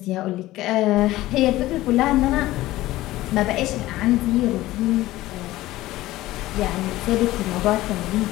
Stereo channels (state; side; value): quieter; right; 16.8 dB